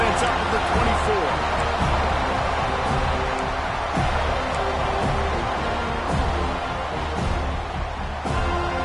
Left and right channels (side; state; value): both; identical; correlation 1.00